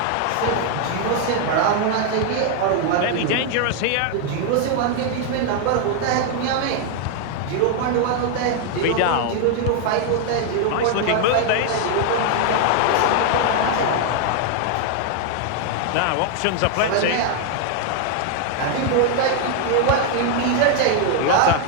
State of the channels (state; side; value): different; both; correlation 0.00